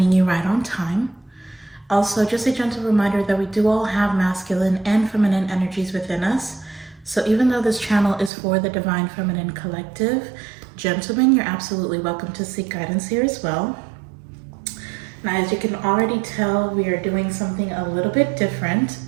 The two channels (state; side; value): drops out; left; at 8.3 s